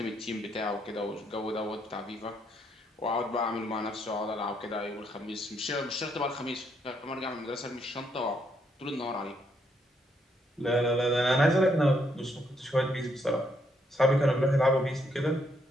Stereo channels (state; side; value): normal; both; correlation 0.74